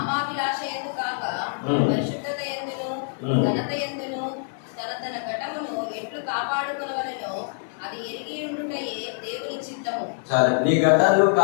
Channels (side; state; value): right; silent; 56 dB below the other